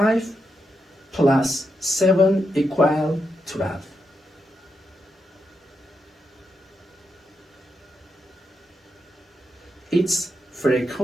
plus 7 equal 12. Its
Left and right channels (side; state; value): both; normal; correlation 0.84